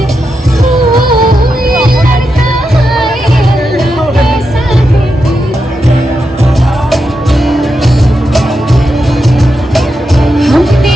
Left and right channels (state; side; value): normal; both; correlation 0.86